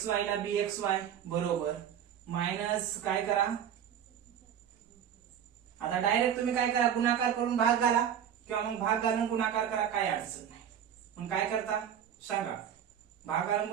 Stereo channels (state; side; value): quieter; left; 9.1 dB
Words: ला BXY बरोबर मायनस काय करा, आता डायरेक्ट तुम्ही काय करा, गुणाकार करून भाग घाला किंवा मग भाग घालून गुणाकार करा, काय अडचण नाही. मग काय करता सांगा, भाग घालून